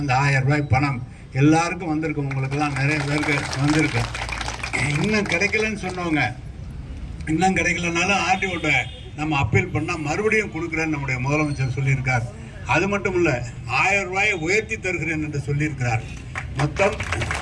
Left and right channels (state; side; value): identical; both; correlation 1.00